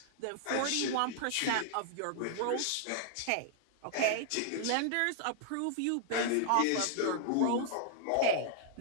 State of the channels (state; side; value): different; both; correlation -0.01